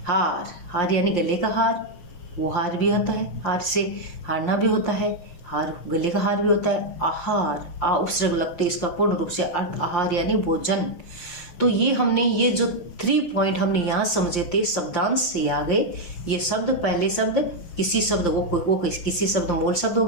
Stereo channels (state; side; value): late; right; 5.8 ms